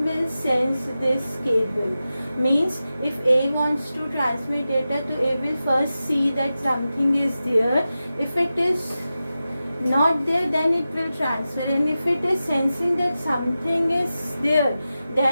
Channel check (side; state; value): both; inverted; correlation -0.93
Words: will sense this cable. Means if A wants to transmit data to A, will first see that something is there. If it is not there, then it will transfer, and if it is sensing that something is there,